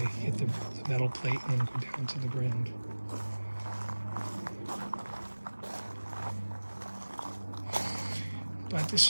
hit the metal plate and then go down to the ground. But this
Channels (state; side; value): inverted; both; correlation -1.00